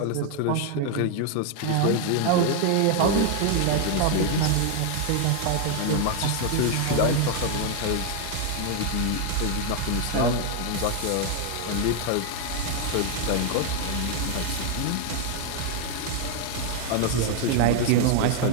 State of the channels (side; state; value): both; different; correlation 0.00